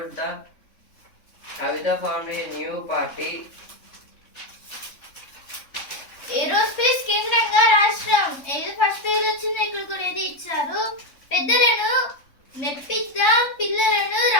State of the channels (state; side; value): late; right; 3.6 ms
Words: the Kavita formed a new party. Aerospace కేంద్రంగా రాష్ట్రం ఏదో first పేరు వచ్చింది, ఇక్కడ కూడా ఏది ఇచ్చారు. పెద్దలను మెప్పిద్దాం, పిల్లలను